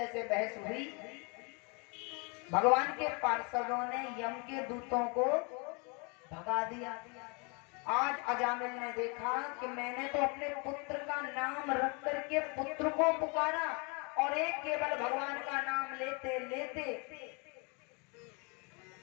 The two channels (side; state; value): right; quieter; 32.8 dB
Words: बहस हुई। भगवान के पार्षदों ने यम के दूतों को भगा दिया। आज अजामिल ने देखा कि मैंने तो अपने पुत्र का नाम रख करके पुत्र को पुकारा और एक केवल भगवान का नाम लेते लेते